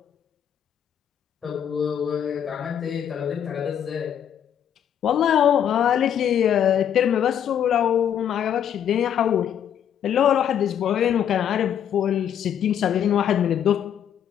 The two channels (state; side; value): quieter; right; 9.3 dB